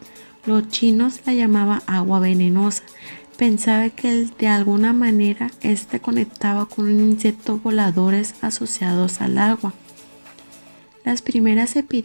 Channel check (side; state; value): both; inverted; correlation -1.00